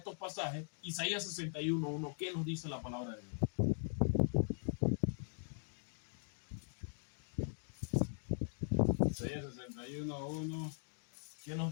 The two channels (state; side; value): silent; right; digital silence